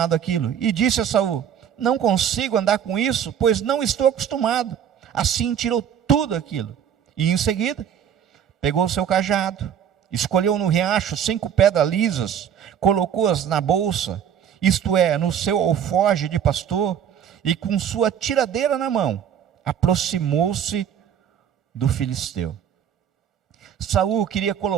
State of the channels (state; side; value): quieter; left; 8.9 dB